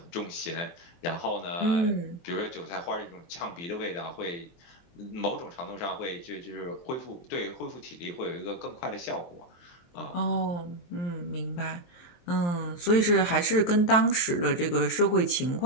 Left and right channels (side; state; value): right; late; 23 ms